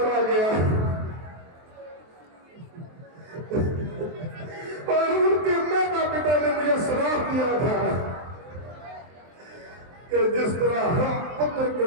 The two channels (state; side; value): late; left; 23 ms